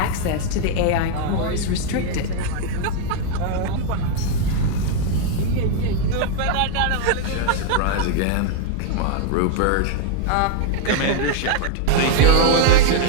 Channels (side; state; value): both; different; correlation 0.00